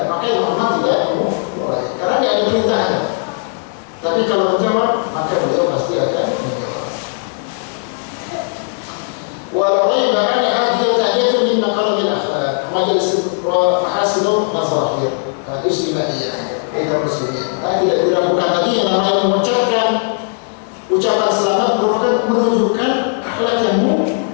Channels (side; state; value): right; silent; 59 dB below the other